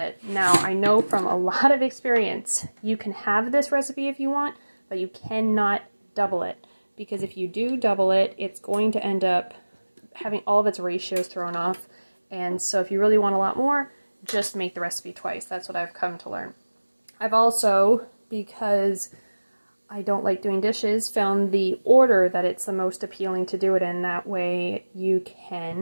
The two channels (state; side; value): inverted; both; correlation -1.00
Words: Now, I know from a lot of experience, you can have this recipe if you want, but you cannot double it, because if you do double it, it's going to end up having all of its ratios thrown off. And so if you really want a lot more, just make the recipe twice. That's what I've come to learn. I've also, because I don't like doing dishes, found the order that it's the most appealing to do it in. That way you